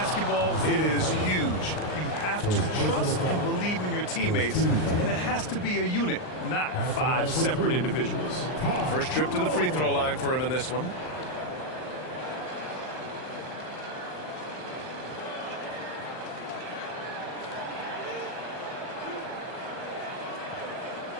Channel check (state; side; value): late; right; 39 ms